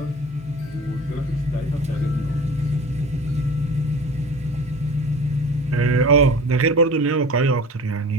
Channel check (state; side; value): normal; both; correlation 0.39